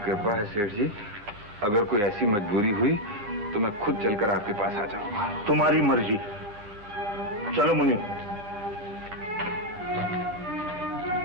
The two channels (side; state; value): left; late; 9.7 ms